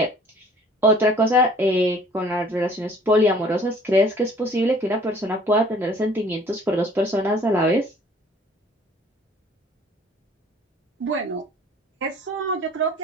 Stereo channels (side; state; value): both; normal; correlation 0.53